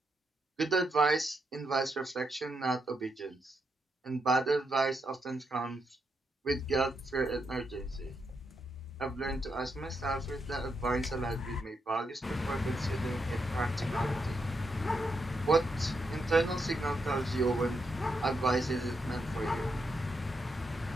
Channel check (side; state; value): both; normal; correlation 0.81